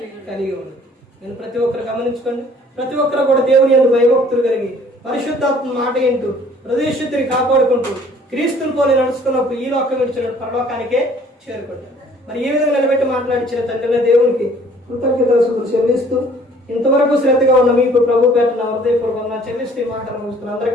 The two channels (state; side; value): normal; both; correlation 0.56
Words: కలిగి ఉండాలి. నేను ప్రతి ఒక్కరు గమనించుకోండి. ప్రతి ఒక్కరు కూడా దేవుని యందు భయభక్తులు కలిగి పరిశుద్ధాత్మ మాట ఏంటూ హృదయశుద్ధిని కాపాడుకుంటూ క్రీస్తుని పోలి నడుచుకున్నప్పుడు ఈ లోకం విడిచిన పరలోకానికే చేరుకుంటారు. మరి ఈ విధంగా నిలబెట్టి మాట్లాడించిన తండ్రిని దేవునికి కృతజ్ఞతలు చెల్లిస్తూ ఇంతవరకు శ్రద్ధగా ఉన్న మీకు ప్రభు పేట నా హృదయపూర్వకంగా చెల్లిస్తూ ఈ మాటలు ముగిస్తున్న